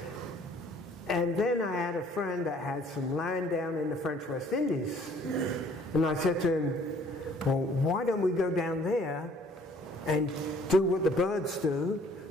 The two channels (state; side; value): normal; both; correlation 0.58